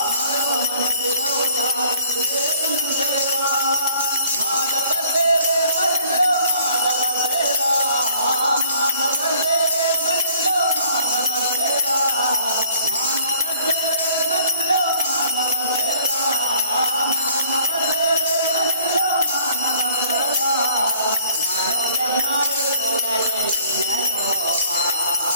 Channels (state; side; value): inverted; both; correlation -0.57